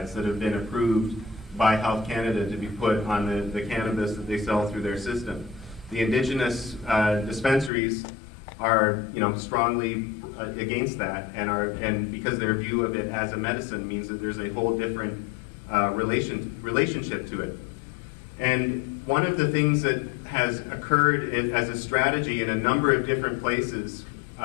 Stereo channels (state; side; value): drops out; right; at 7.7 s